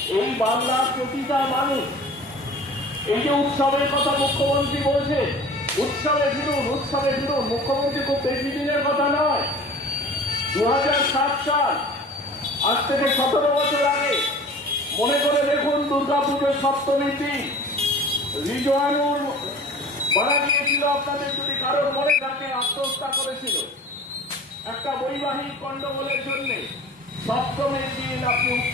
এই বাংলার প্রতিটা মানুষ, এই যে উৎসবের কথা মুখ্যমন্ত্রী বলছে, উৎসবে ফিরুন, উৎসবে ফিরুন। মুখ্যমন্ত্রী খুব বেশি দিনের কথা নয়, 2007 সাল, আজ থেকে 17 বছর আগে। মনে করে দেখুন, দুর্গাপুজোর সপ্তমীর দিন রিজওয়ানুর মারা গিয়েছিল। আপনাদের যদি কারোর মনে থাকে, আত্মহত্যা করেছিল একটা বৈবাহিক গন্ডগোলের জন্য। সপ্তমীর দিন আপনি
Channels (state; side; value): normal; both; correlation 0.42